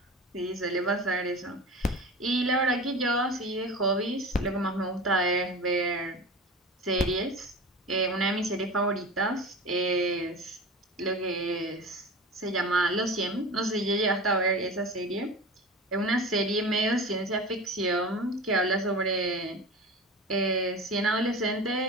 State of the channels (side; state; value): both; normal; correlation 0.33